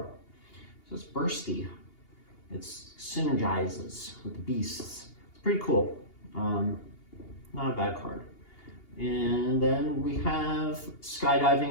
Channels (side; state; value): right; late; 2.8 ms